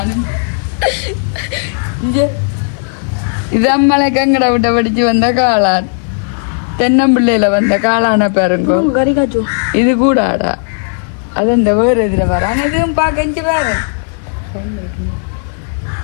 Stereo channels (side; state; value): right; silent; 70 dB below the other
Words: இது அம்மளை கங்கட விட்ட படிச்சு வந்த காளான், தென்னம்பிள்ளையில வந்த காளான பாருங்க. இது கூட ஆடா அது இந்த வேறு இதில் வர இதுவும் பார்க்க வேறு